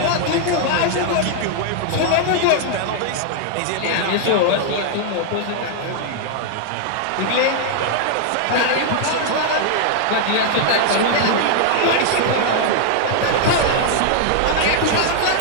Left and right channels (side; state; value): both; different; correlation 0.00